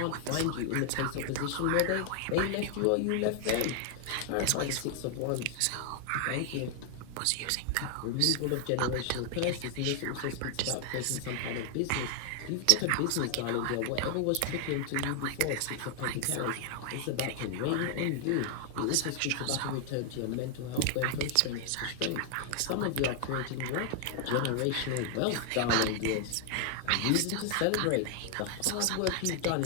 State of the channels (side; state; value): both; different; correlation 0.00